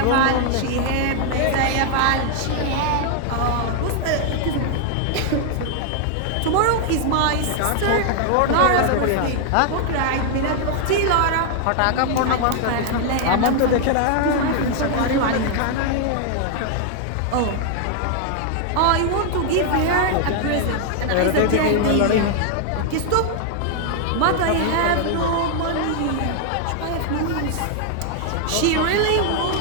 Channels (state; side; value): different; both; correlation 0.00